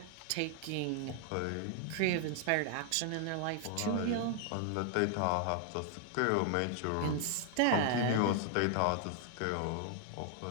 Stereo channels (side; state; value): both; different; correlation 0.00